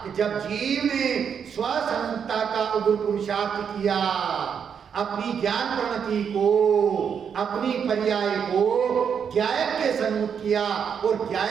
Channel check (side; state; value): left; quieter; 7.3 dB